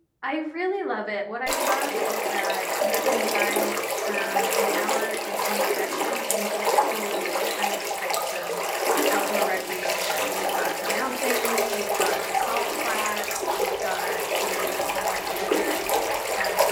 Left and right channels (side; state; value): both; identical; correlation 1.00